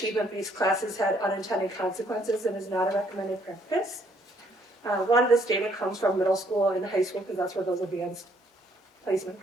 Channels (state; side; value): normal; both; correlation 0.66